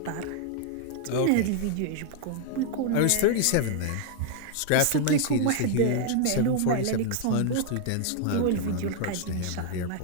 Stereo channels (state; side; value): different; both; correlation 0.00